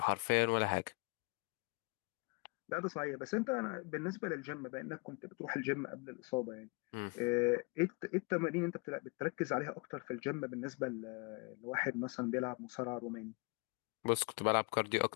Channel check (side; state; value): right; quieter; 30.7 dB